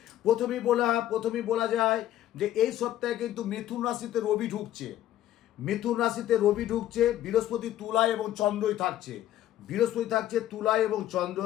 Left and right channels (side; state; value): right; quieter; 12.8 dB